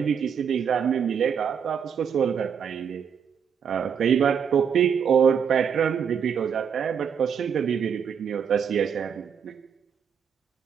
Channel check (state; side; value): quieter; left; 7.3 dB